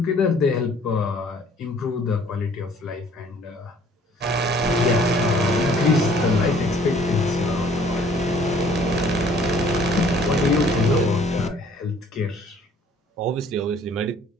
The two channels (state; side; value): normal; both; correlation 0.57